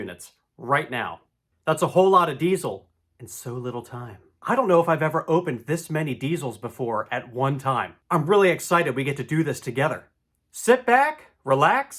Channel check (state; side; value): identical; both; correlation 1.00